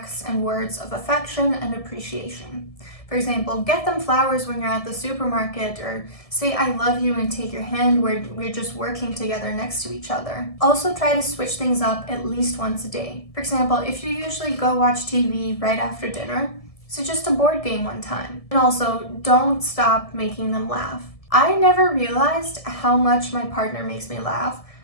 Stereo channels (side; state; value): right; late; 1.7 ms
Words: and words of affection and appreciation. For example, get them flowers when you're at the supermarket, or say I love you and take your hand where we're just working together next to each other. Also try to switch things up at least once a day. For example, if you usually go watch TV right after dinner, suggest a board game one time. And also, don't stop making them laugh. I never realized how much my partner makes me laugh